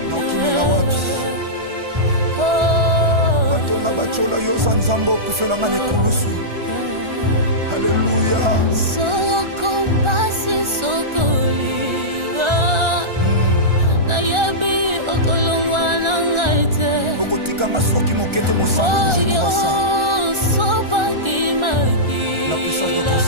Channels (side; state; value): left; late; 1.4 ms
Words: na okimela wapi batonga bachola yoza nzambe okufelanga na ekulusu Alléluia. Soko pasi soko liwa. Na yebi okolongwa na ngaite. Okotika masoki mokete mosantu je crois ça. Sopa kimaki. La puissance de ton